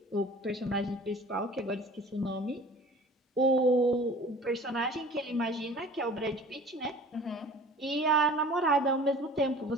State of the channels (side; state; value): both; normal; correlation 0.45